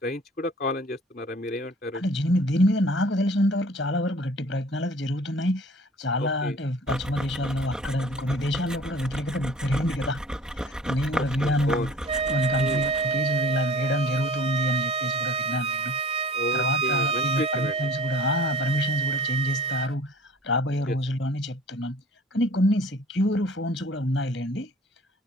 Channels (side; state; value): both; normal; correlation 0.46